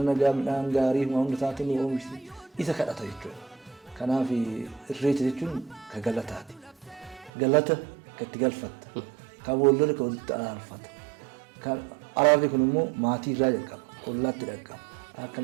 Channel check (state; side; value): drops out; left; at 7.3 s